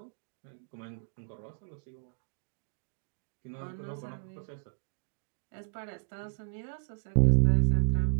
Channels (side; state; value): left; silent; digital silence